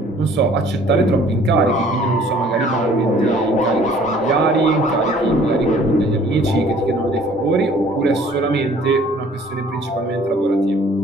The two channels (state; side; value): normal; both; correlation 0.55